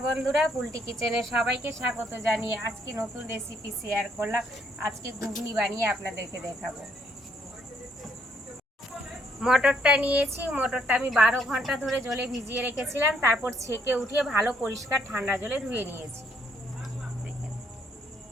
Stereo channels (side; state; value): both; normal; correlation 0.70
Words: বন্ধুরা, পুলটি কিচেনে সবাইকে স্বাগত জানিয়ে আজকে নতুন রেসিপি শেয়ার করলাম। আজকে ঘুগনি বানিয়ে আপনাদেরকে দেখাবো। মটরটা নিয়েছি, মটরটা আমি 12 ঘন্টা ধরে জলে ভিজিয়ে রেখেছিলাম, তারপর ছেঁকে উঠিয়ে ভালো পরিষ্কার ঠান্ডা জলে ধুয়ে নিয়েছি।